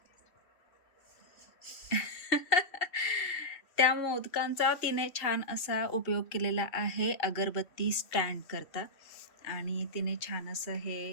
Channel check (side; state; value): right; late; 2.8 ms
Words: त्या मोदकांचा तिने छान असा उपयोग केलेला आहे अगरबत्ती स्टँड करता. आणि तिने छान असं